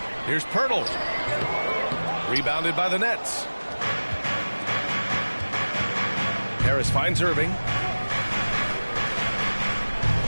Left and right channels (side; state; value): both; inverted; correlation -1.00